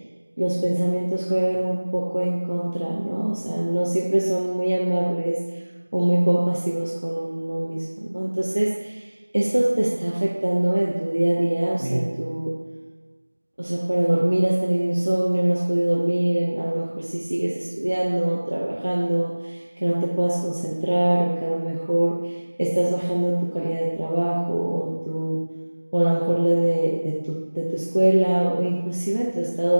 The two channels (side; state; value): both; inverted; correlation -1.00